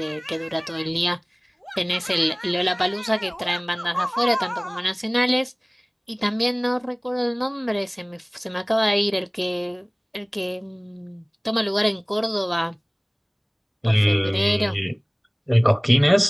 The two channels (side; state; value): both; identical; correlation 1.00